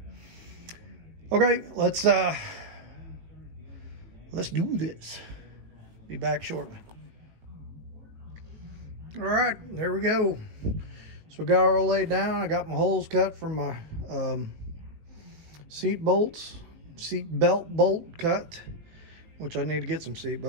okay, let's do this. Be back shortly. All right, there we go. So we got it all laid down. I got my holes cut from my seat belt bolt cut, which I need to get some seat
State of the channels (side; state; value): left; late; 18 ms